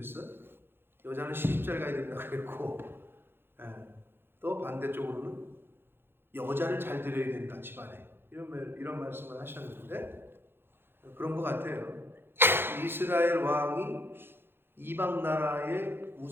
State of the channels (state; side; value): late; left; 0.10 ms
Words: 여자는 시집 잘 가야 된다고 그랬고 또 반대쪽으로는 여자를 잘 들여야 된다 집안에. 이런 말씀을 하셨는데 그런 것 같아요. 이스라엘 왕이 이방 나라에